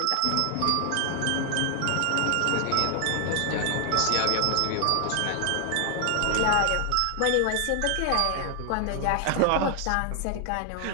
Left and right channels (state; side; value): different; both; correlation 0.00